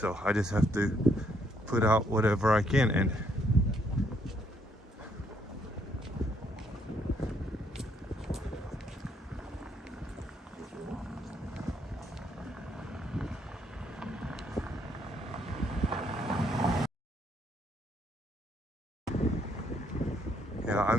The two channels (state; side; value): normal; both; correlation 0.71